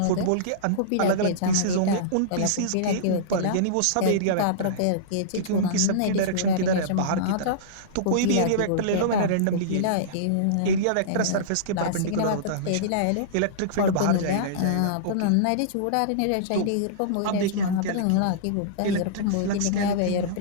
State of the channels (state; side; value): different; both; correlation -0.03